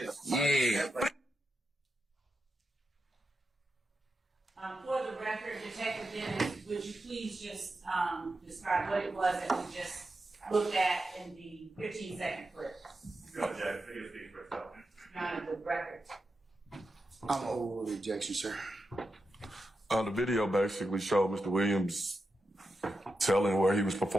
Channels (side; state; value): both; normal; correlation 0.89